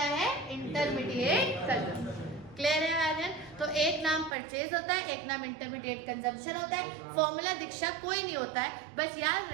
है, इंटरमीडिएट कंजम्पशन। क्लियर है आर्यन? तो एक नाम परचेज होता है, एक नाम इंटरमीडिएट कंजम्पशन होता है। फॉर्मूला दीक्षा कोई नहीं होता है, बस याद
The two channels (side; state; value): left; drops out; at 4.4 s